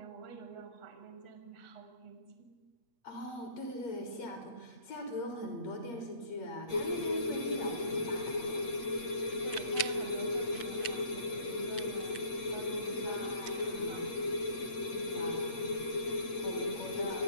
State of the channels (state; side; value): late; right; 8.5 ms